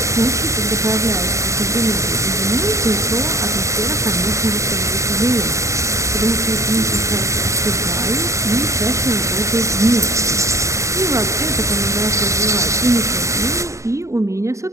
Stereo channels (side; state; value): left; late; 0.15 ms